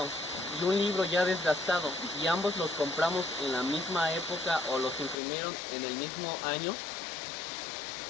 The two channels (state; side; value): drops out; right; at 5.2 s